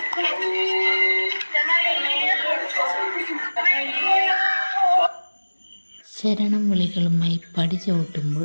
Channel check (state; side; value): inverted; both; correlation -1.00